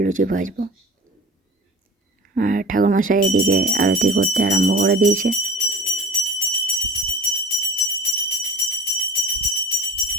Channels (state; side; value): normal; both; correlation 0.38